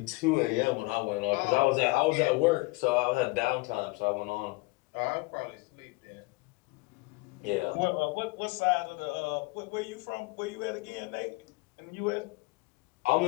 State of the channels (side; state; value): right; quieter; 25.1 dB